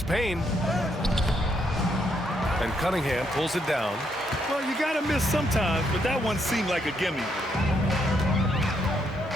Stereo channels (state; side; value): normal; both; correlation 0.75